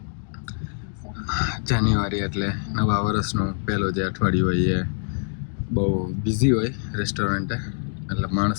જાન્યુઆરી એટલે નવા વર્ષનું પહેલું જે અઠવાડિયું હોય એ બહુ બિઝી હોય રેસ્ટોરન્ટે. એટલે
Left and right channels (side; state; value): right; silent; digital silence